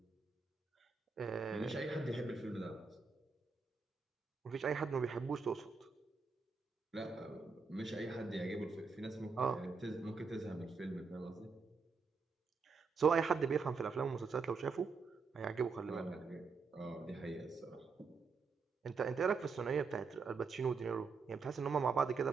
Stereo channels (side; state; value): left; quieter; 4.8 dB